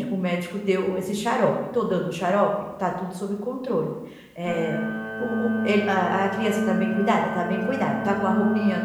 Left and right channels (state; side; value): identical; both; correlation 1.00